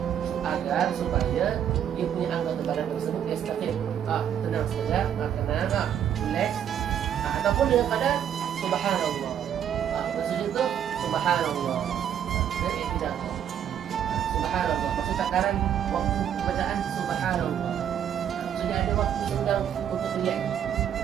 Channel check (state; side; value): quieter; left; 9.4 dB